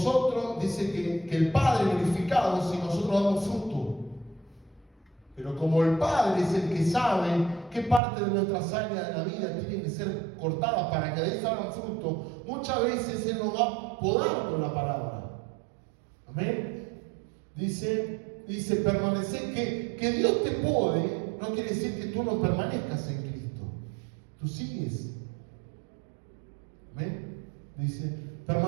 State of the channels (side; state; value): left; drops out; at 8.0 s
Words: dice que el Padre glorificado si nosotros damos fruto. Pero como el Padre es el que sabe qué parte de nuestras áreas de la vida tienen que ser cortadas para que de ahí salgan fruto, muchas veces Él nos va a podar con la palabra. Amén. Dice permanecer, que Dios te pode, no quiere decir que tú no permanezcas en Cristo. Tú sigues. Amén. Dice,